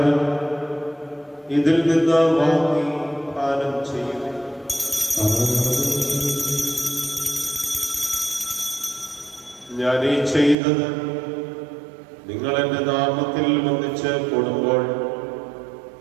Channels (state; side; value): drops out; left; at 10.6 s